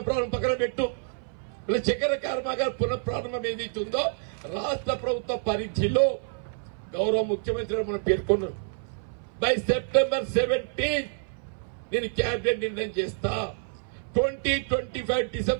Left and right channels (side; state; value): left; silent; 59 dB below the other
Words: పక్కన పెట్టు. ఇలా చక్కెర కర్మాగారం పునఃప్రారంభం ఏదైతుందో రాష్ట్ర ప్రభుత్వ పరిధిలో గౌరవ ముఖ్యమంత్రి మనం పేర్కొన్నారు. బై సెప్టెంబర్ 17 నేను క్యాబినెట్ నిర్ణయం చేస్తా. 2025